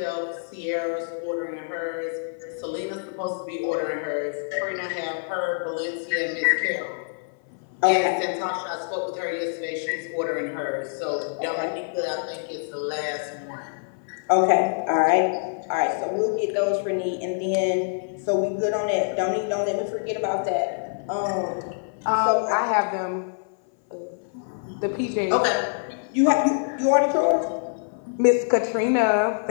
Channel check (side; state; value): right; silent; 59 dB below the other